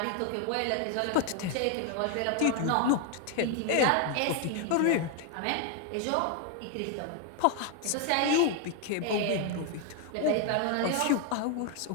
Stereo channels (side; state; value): both; different; correlation 0.01